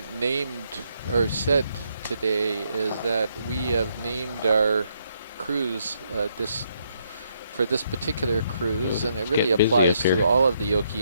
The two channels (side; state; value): both; inverted; correlation -0.74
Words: named or said today is that we have named our cruise for this particular cruise, and it really applies to all of the